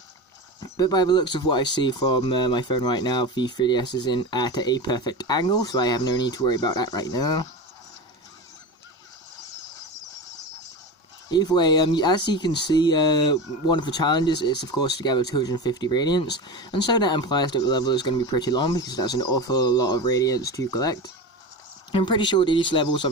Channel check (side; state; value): both; normal; correlation 0.26